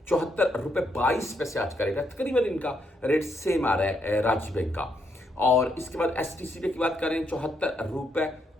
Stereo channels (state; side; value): normal; both; correlation 0.76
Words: 74 रुपए 22 पैसे आज का रेट है। तकरीबन इनका रेट सेम आ रहा है रांची बैंक का। और इसके बाद STC की बात करें 74 रुपए